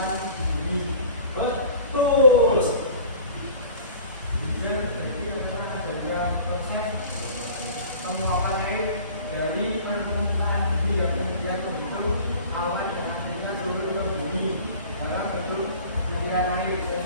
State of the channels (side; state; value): both; inverted; correlation -0.44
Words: ini. Betul. Hujan itu adalah sebuah proses penguapan air dari permukaan bumi yang kemudian membentuk awan dan akhirnya turun ke bumi dalam bentuk butiran air.